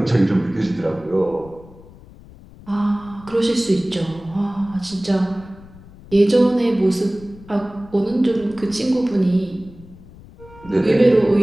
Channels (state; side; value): noise; left; rumble, 21 dB below the sound